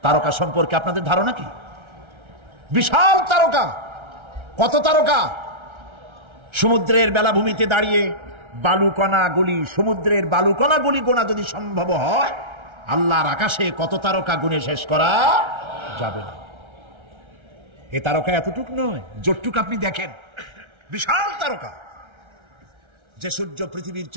তারকা সম্পর্কে আপনাদের ধারণা কি? বিশাল তারকা, কত তারকা! সমুদ্রের বেলাভূমিতে দাঁড়িয়ে বালুকণাগুলি, সমুদ্রের বালুকণাগুলি গোনা যদি সম্ভব হয়, আল্লাহর আকাশে কত তারকা গুণে শেষ করা যাবে না। এ তারকা এতটুক নয়, যতটুক আপনি দেখেন বিশাল তারকা, যে সূর্য পৃথিবীর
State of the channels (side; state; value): left; late; 1.3 ms